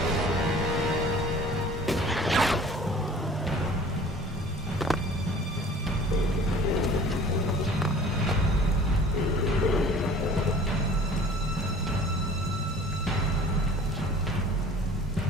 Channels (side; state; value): both; normal; correlation 0.47